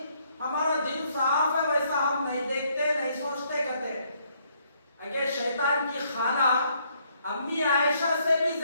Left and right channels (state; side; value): inverted; both; correlation -0.69